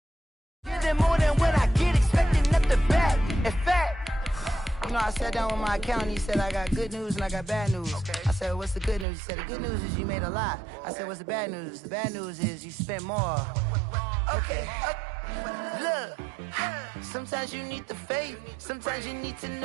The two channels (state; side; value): drops out; left; at 9.1 s